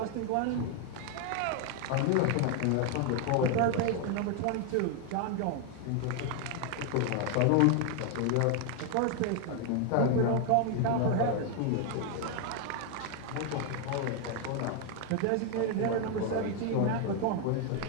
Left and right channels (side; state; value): both; different; correlation 0.01